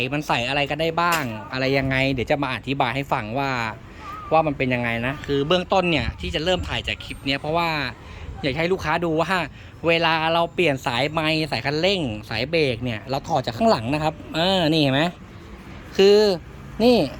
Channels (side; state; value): both; identical; correlation 1.00